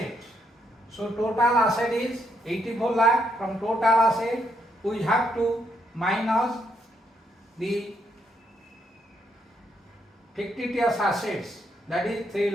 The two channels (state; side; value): normal; both; correlation 0.76